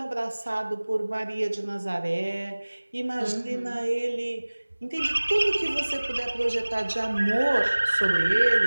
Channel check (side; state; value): both; inverted; correlation -1.00